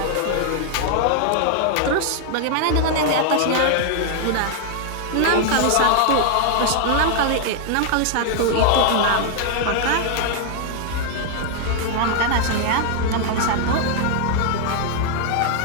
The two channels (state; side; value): different; both; correlation 0.00